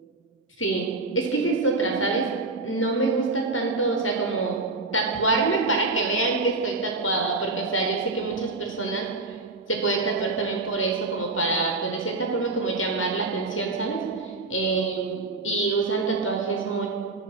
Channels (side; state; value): left; quieter; 3.4 dB